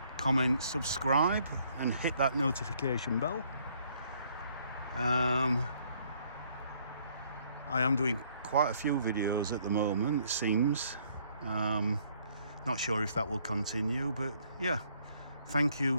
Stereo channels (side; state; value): both; inverted; correlation -0.65